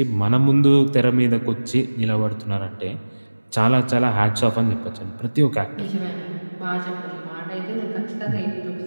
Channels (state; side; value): inverted; both; correlation -1.00